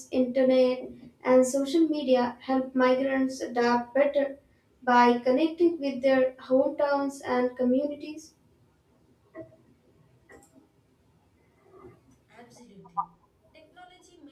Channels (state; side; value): identical; both; correlation 1.00